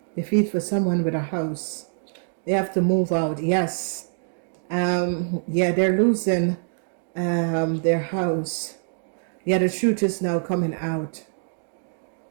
Defeat for someone with a house. They have to move out. Yes. Yeah, they're losing their house. Yeah, the truth is now coming out.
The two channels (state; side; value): silent; left; digital silence